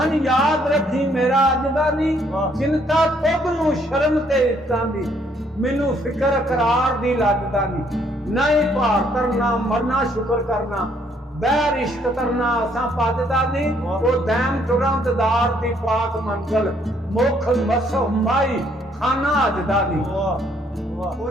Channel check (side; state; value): both; normal; correlation 0.67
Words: ਯਾਦ ਰੱਖੀ ਮੇਰਾ ਅੱਜ ਦਾ ਨਹੀਂ ਚਿੰਤਾ ਤੁਧ ਨੂੰ ਸ਼ਰਮ ਤੇ ਇੱਤਾਂ ਦੀ ਮੈਨੂੰ ਫਿਕਰ ਕਰਾਰ ਦੀ ਲੱਗਦਾ ਨਹੀਂ ਭਾਰ ਕਰਨਾ ਮਰਨਾ ਸ਼ੁਕਰ ਕਰਨਾ ਬਹਿਰ ਇਸ਼ਕ ਕਰਨਾ ਅਸਾਂ ਪੱਜਦਾ ਨਹੀਂ ਉਹ ਦੈਮ ਤੁਰੰਤਦਾਰ ਦੀ ਪਾਕ ਮੰਜ਼ਲ ਮੁਖ ਮਸੋ ਮਾਈ ਖਾਨਾ ਅਜਦਾ ਨਹੀਂ